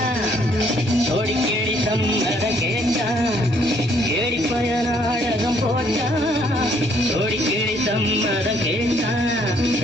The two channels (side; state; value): right; noise; rumble, 23 dB below the sound